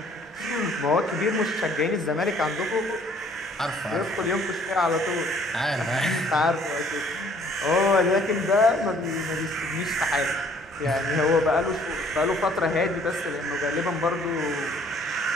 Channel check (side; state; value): both; normal; correlation 0.59